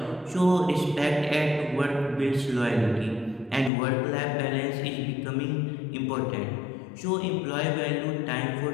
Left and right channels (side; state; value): right; drops out; at 3.7 s